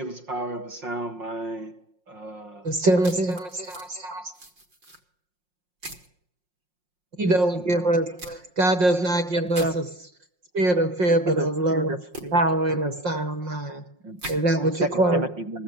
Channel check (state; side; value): late; left; 5.6 ms